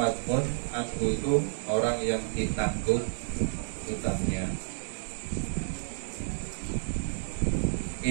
anhu itu orang yang ditanggung hutangnya.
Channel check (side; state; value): left; silent; digital silence